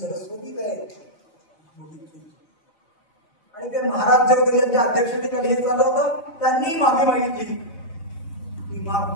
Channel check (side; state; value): right; late; 5.2 ms